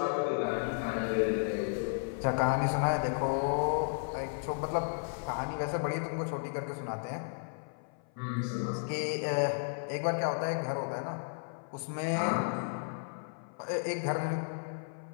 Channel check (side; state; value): right; silent; 55 dB below the other